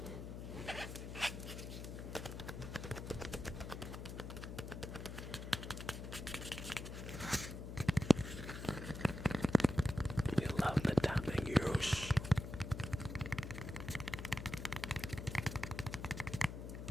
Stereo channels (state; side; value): noise; left; hum, 8 dB below the sound